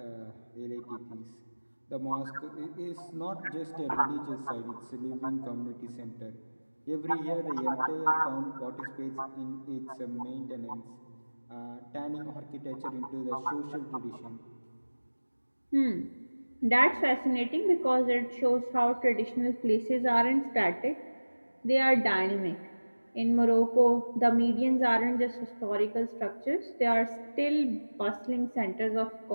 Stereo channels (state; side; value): inverted; both; correlation -1.00